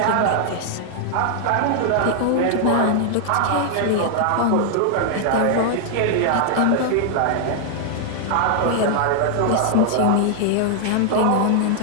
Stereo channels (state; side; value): different; both; correlation -0.01